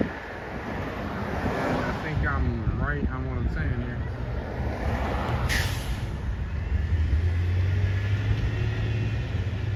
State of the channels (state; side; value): identical; both; correlation 1.00